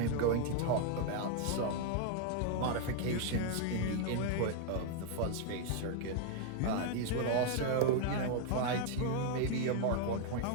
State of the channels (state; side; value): different; both; correlation 0.00